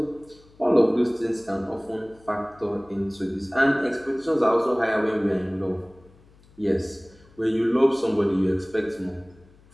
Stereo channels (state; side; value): noise; left; hum, 28 dB below the sound